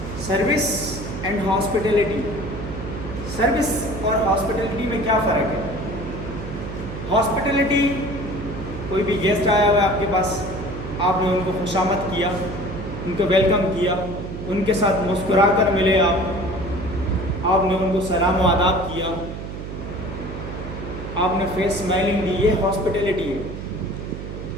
सर्विस एंड हॉस्पिटैलिटी। सर्विस और हॉस्पिटैलिटी में क्या फ़र्क है? हॉस्पिटैलिटी, कोई भी गेस्ट आया हुआ है आपके पास, आपने उनको खुशामद किया, उनको वेलकम किया, उनके साथ मुस्कुरा कर मिले आपने उनको सलाम व आदाब किया, आपने फेस स्माइलिंग दी, ये हॉस्पिटैलिटी है।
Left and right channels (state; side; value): noise; right; hum, 8 dB below the sound